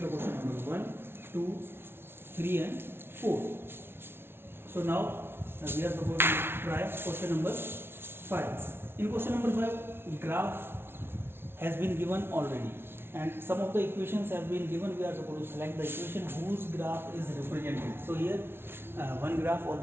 the question number 1, 2, 3 and 4. So now we are supposed to try question number 5. In question number 5, graph has been given already, and some of the equations have been given. We are supposed to select the equation whose graph is represented. So here one graph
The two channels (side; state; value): left; late; 0.11 ms